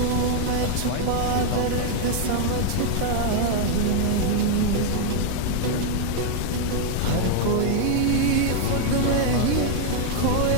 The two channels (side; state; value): both; different; correlation 0.00